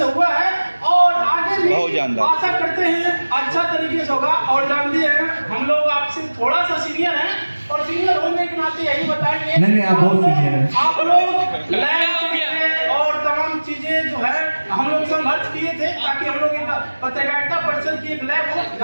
हुआ है और आगे भी आशा करते हैं अच्छा तरीके से होगा। और जानते हैं हम लोग आपसे थोड़ा सा सीनियर हैं और सीनियर होने के नाते यही बताएंगे नहीं आप बहुत सीनियर हैं। आप लोग लैब और तमाम चीजें जो है हम लोग संघर्ष किए थे ताकि हम लोग एक पत्रकारिता परिषद की एक लैब हो,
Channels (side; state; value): both; inverted; correlation -1.00